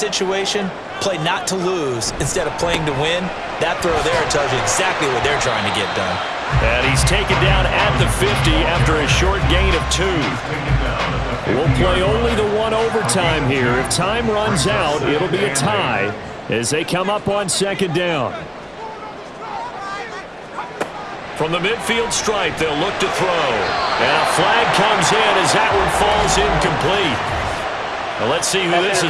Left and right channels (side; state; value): both; identical; correlation 1.00